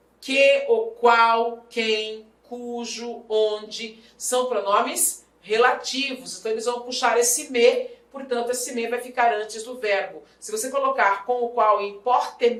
Que, o qual, quem, cujo, onde, são pronomes relativos. Então eles vão puxar esse me, portanto esse me vai ficar antes do verbo. Se você colocar com o qual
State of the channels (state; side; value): identical; both; correlation 1.00